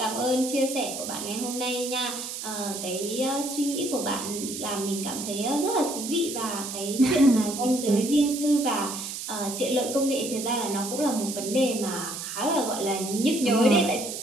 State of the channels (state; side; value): noise; right; hiss, 7 dB below the sound